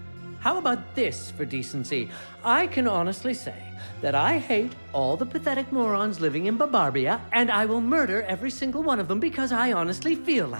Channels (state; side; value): inverted; both; correlation -1.00